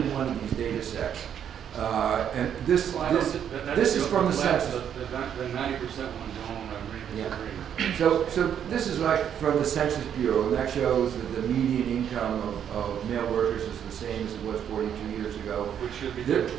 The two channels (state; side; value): quieter; left; 9.0 dB